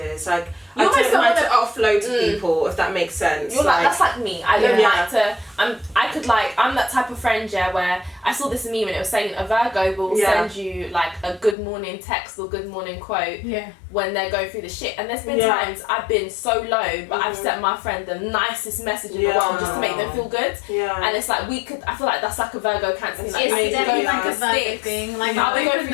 Like I don't like to offload to people, if that makes sense. That's like me. I don't like to. I'm that type of friend where I saw this meme and it was saying a Virgo will send you like a good morning text or good morning quote when they're going through the shit. And there's been times I've been so low, but I've sent my friend the nicest message in the world just to make them feel good. And it's like I feel like that's like a Virgo Cancer thing. Like, it's definitely like a Virgo thing. Like I'll be going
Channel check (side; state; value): right; drops out; at 11.6 s